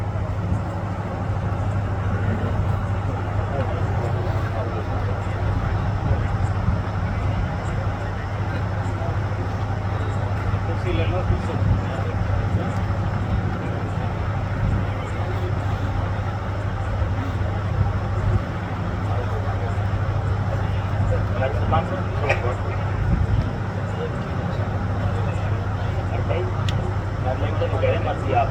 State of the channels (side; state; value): both; identical; correlation 1.00